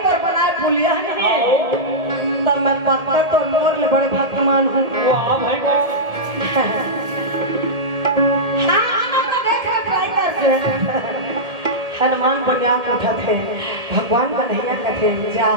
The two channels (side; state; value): left; late; 1.7 ms